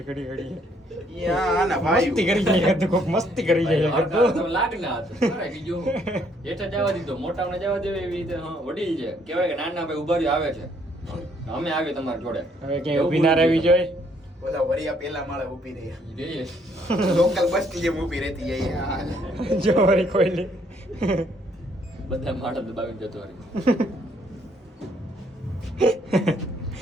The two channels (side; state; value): both; normal; correlation 0.67